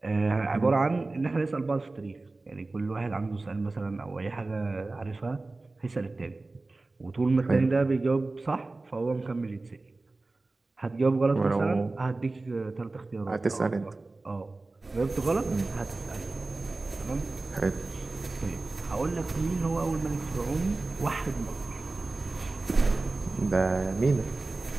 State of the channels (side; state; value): left; quieter; 3.3 dB